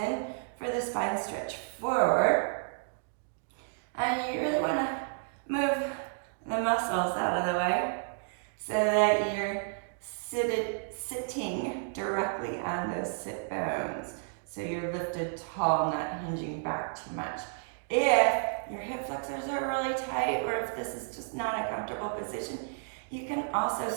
for the spine stretch forward. And you really want to move the muscles out of the way so that you're sitting directly on those sit bones. So you're lifted tall, not hinging back too much. If your hip flexors are really tight, or if this is just not a comfortable position, you can also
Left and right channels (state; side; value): silent; left; digital silence